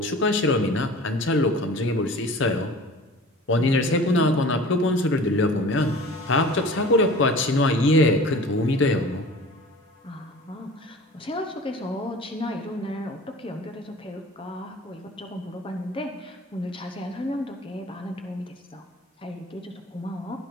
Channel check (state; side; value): normal; both; correlation 0.42